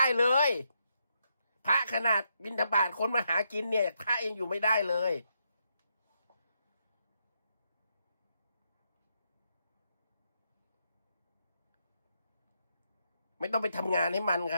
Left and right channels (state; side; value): inverted; both; correlation -0.80